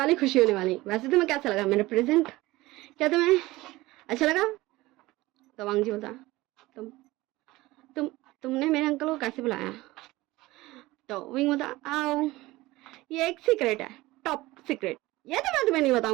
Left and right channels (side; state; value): left; quieter; 19.2 dB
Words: खुशी होने वाली। वैसे तुम्हें कैसा लगा मेरा प्रेजेंट, क्या तुम्हें अच्छा लगा? तो वांग जी बोलता, तुम तुम तुमने मेरे अंकल को कैसे बुलाया? तो विंग बोलता, आओ ये एक सीक्रेट है, टॉप सीक्रेट, ये तो मैं तुम्हें नहीं